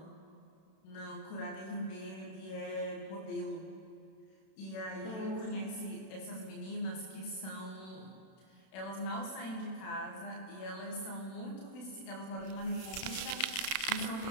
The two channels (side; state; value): right; late; 32 ms